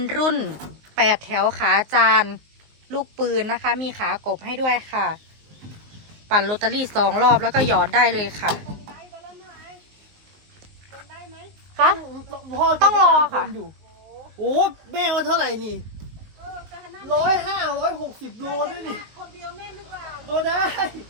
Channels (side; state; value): left; late; 19 ms